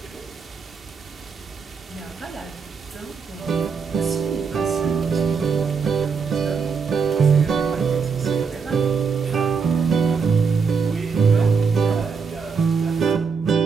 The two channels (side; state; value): left; quieter; 5.5 dB